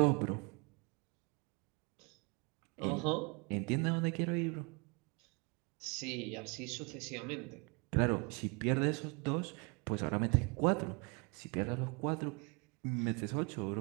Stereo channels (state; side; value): quieter; left; 32.0 dB